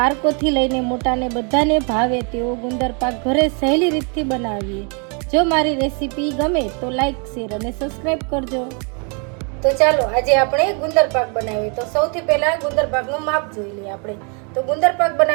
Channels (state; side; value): quieter; left; 36.6 dB